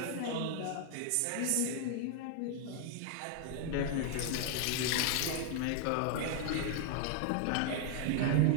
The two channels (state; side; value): different; both; correlation 0.00